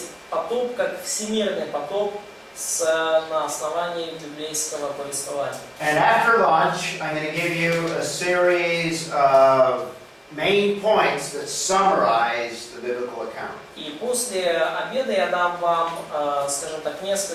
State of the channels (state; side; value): identical; both; correlation 1.00